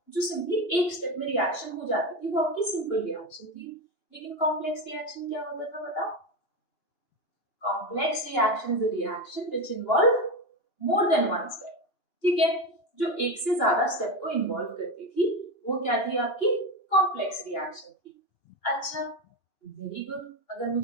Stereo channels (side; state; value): right; late; 2.8 ms